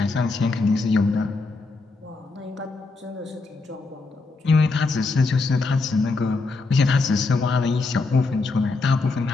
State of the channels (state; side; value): quieter; right; 3.8 dB